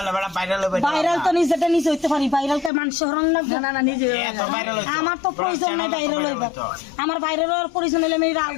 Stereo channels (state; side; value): drops out; right; at 2.7 s